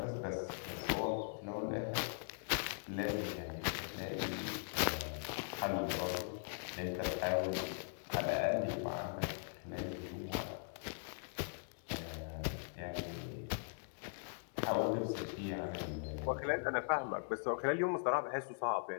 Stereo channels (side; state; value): right; silent; digital silence